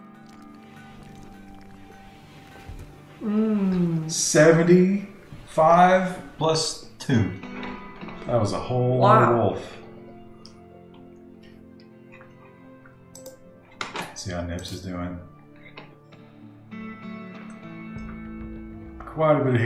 75 plus 2. That was a whole lot of wolf. See how Nips is doing. Quite a bit of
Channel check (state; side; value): identical; both; correlation 1.00